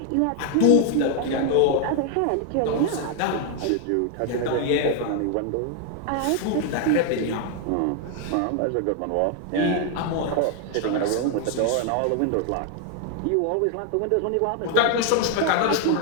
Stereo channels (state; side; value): different; both; correlation 0.00